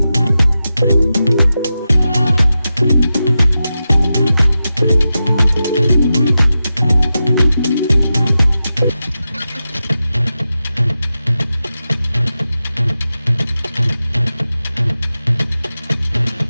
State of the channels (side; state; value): both; inverted; correlation -0.91